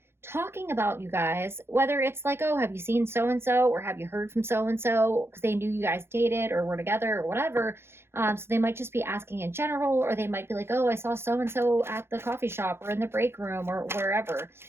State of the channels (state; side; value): late; left; 0.12 ms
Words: talking about you guys, whether it's like, oh, have you seen so and so, or have you heard from so and so, because they knew you guys dated or were together or whatever. So they might just be asking in general, or they might be like, oh, I saw so and so at the coffee shop or in the break room or wherever.